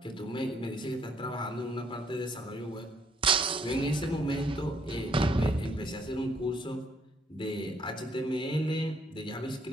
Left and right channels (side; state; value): both; normal; correlation 0.67